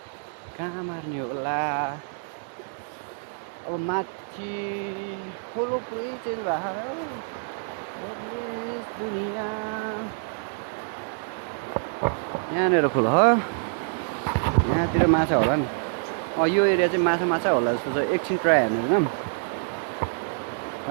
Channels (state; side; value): silent; left; digital silence